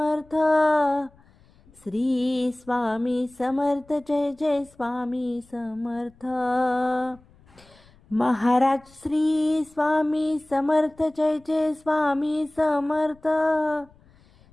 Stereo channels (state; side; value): noise; left; rumble, 29 dB below the sound